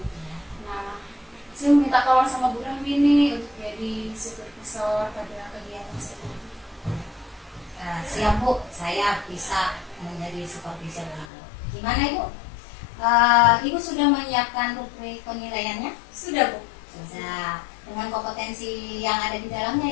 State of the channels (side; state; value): right; drops out; at 11.2 s